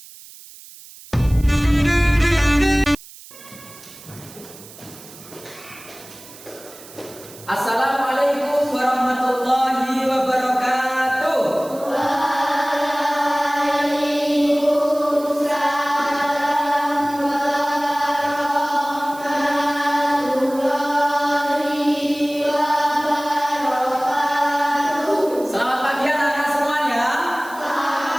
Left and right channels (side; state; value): right; noise; hiss, 19 dB below the sound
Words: Assalamualaikum warahmatullahi wabarakatuh. Waalaikumsalam warahmatullahi wabarakatuh. Selamat pagi anak-anak semuanya.